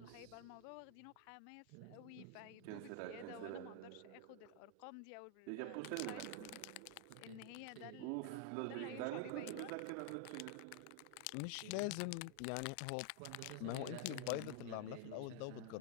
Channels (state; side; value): different; both; correlation 0.00